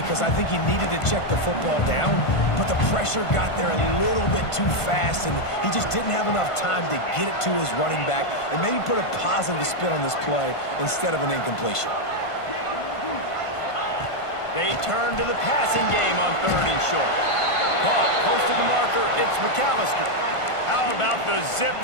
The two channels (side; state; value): right; late; 1.5 ms